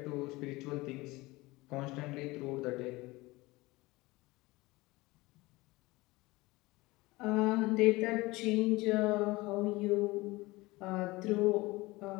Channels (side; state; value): right; quieter; 21.3 dB